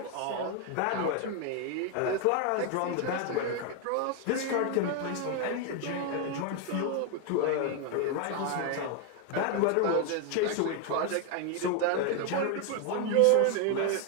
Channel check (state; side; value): different; both; correlation 0.01